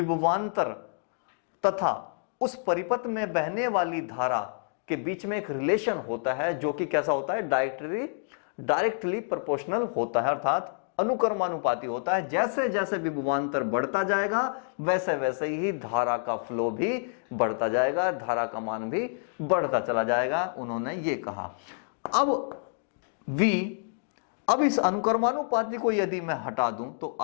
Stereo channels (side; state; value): right; silent; digital silence